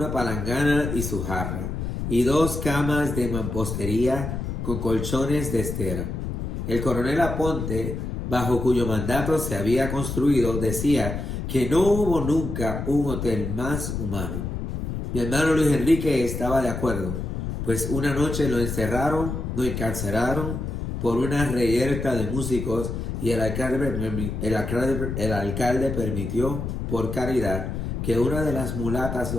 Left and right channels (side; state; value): left; noise; rumble, 4 dB below the sound